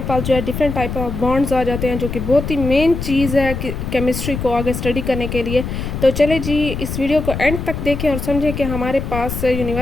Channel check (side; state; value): left; noise; rumble, 5 dB below the sound